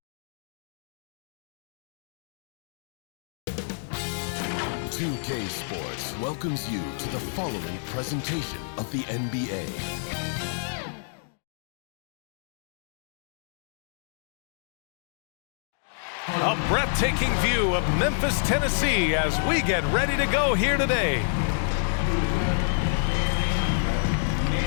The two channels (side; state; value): right; silent; digital silence